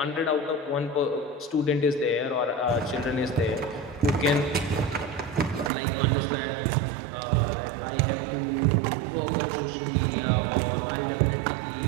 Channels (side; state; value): left; drops out; at 5.7 s